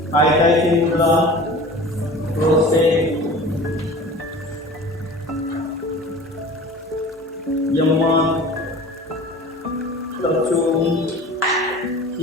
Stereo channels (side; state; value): both; normal; correlation 0.40